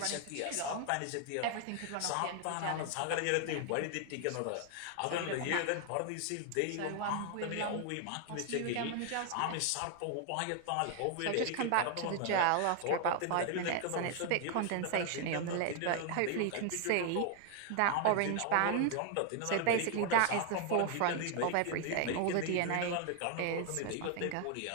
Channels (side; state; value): both; different; correlation 0.00